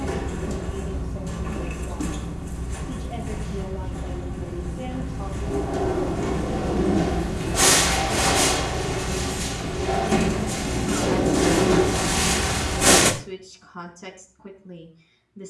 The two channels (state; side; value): identical; both; correlation 1.00